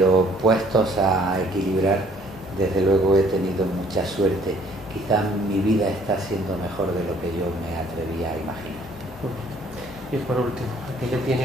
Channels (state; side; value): normal; both; correlation 0.59